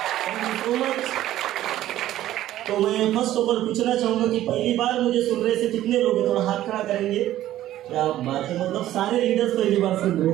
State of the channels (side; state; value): left; quieter; 13.6 dB